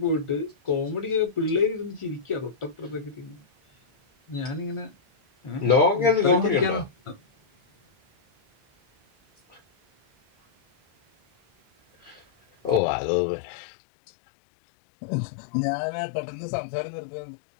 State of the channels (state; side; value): drops out; right; at 12.8 s